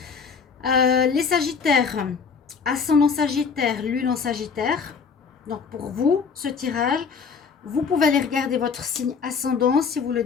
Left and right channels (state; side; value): quieter; right; 5.7 dB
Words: Les Sagittaires, ascendant Sagittaire, lune en Sagittaire. Donc pour vous, ce tirage, vous pouvez aller regarder votre signe ascendant si vous le